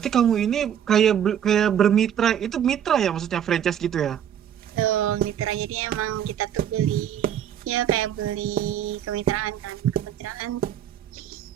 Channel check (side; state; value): left; quieter; 9.6 dB